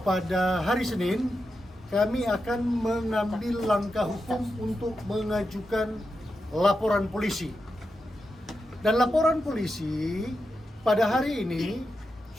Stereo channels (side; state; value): both; normal; correlation 0.88